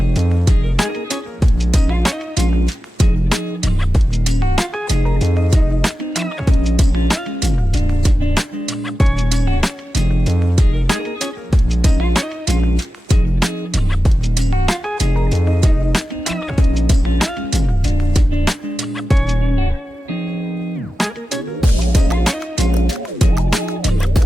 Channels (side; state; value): both; normal; correlation 0.93